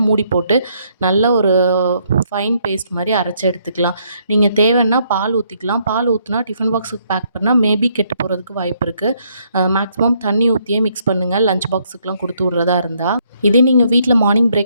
மூடி போட்டு நல்ல ஒரு ஃபைன் பேஸ்ட் மாதிரி அரைச்சி எடுத்துக்கலாம். நீங்கள் தேவைன்னா பால் ஊற்றிக்கலாம். பால் ஊற்றினா டிஃபன் பாக்ஸுக்கு பேக் பண்ணால் மேபி கெட்டு போகிறதுக்கு வாய்ப்பு இருக்குது. மேக்ஸிமம் தண்ணி ஊற்றியே மிக்ஸ் பண்ணுங்கள் லஞ்ச் பாக்ஸுக்கெலாம் கொடுத்து விட்றதா இருந்தால். இதே நீங்கள் வீட்டில் மார்னிங்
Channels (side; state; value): both; inverted; correlation -0.71